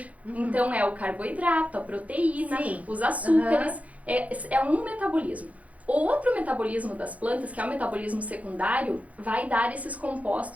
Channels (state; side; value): late; left; 0.068 ms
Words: Então, é o carboidrato, a proteína, os açúcares. É um metabolismo. O outro metabolismo das plantas, que é o metabolismo secundário, vai dar esses